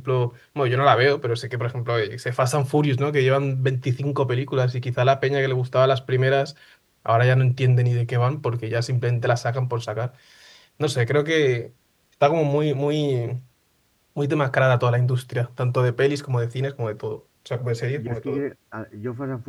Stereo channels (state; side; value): identical; both; correlation 1.00